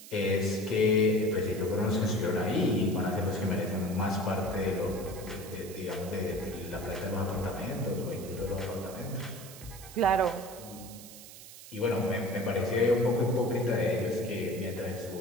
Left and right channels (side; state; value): right; noise; hiss, 16 dB below the sound